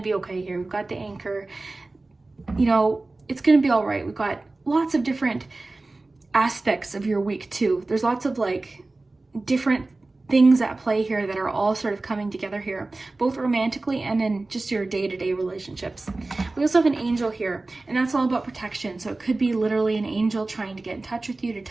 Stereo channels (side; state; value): left; quieter; 3.2 dB